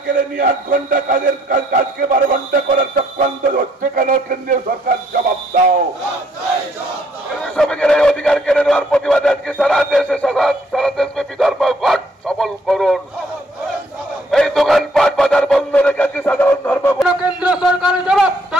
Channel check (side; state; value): both; normal; correlation 0.67